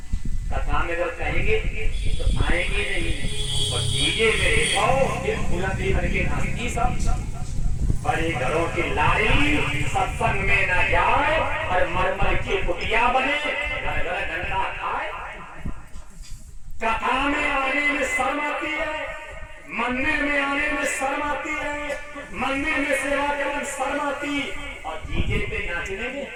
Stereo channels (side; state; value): both; identical; correlation 1.00